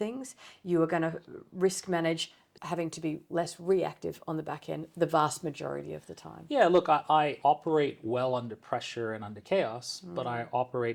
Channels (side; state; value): both; identical; correlation 1.00